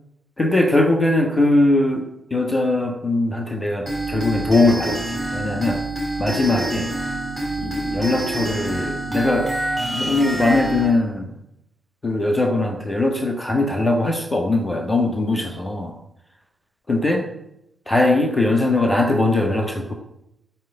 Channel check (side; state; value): both; normal; correlation 0.82